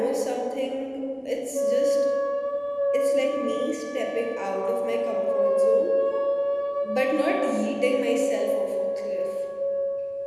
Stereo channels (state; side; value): identical; both; correlation 1.00